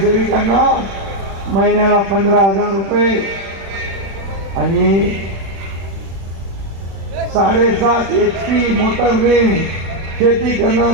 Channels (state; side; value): late; left; 36 ms